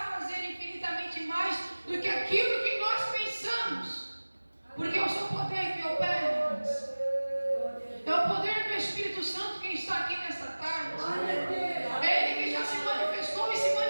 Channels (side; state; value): both; inverted; correlation -1.00